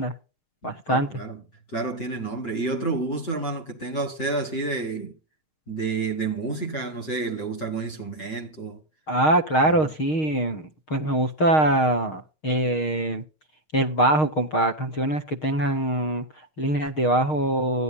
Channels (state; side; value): late; right; 6.4 ms